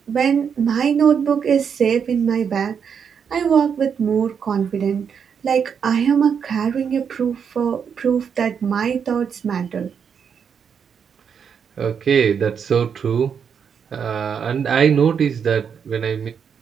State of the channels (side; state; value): left; quieter; 7.1 dB